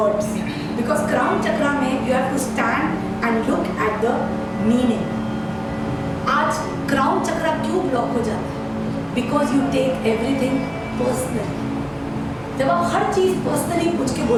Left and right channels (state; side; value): identical; both; correlation 1.00